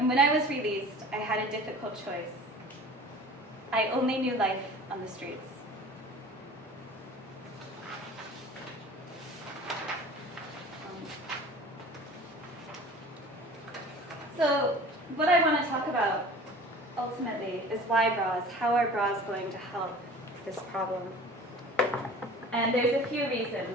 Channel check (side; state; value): both; normal; correlation 0.42